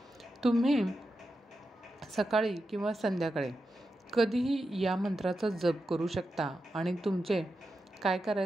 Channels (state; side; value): normal; both; correlation 0.89